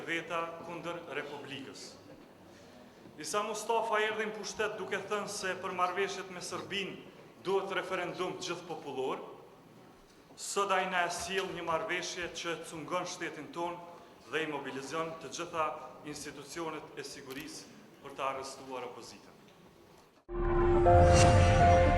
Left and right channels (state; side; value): identical; both; correlation 1.00